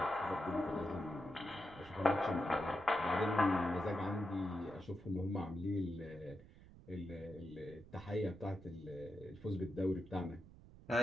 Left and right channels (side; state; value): right; noise; rumble, 19 dB below the sound